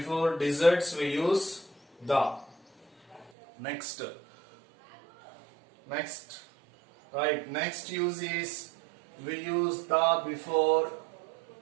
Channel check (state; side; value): drops out; left; at 3.3 s